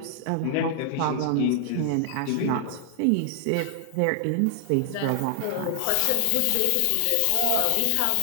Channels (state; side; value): different; both; correlation 0.00